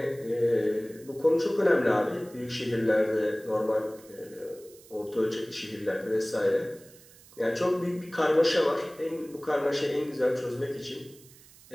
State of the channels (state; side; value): noise; right; hiss, 23 dB below the sound